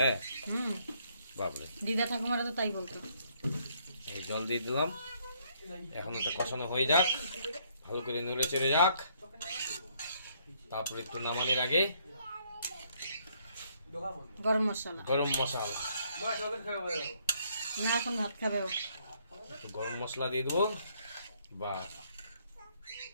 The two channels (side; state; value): both; inverted; correlation -0.68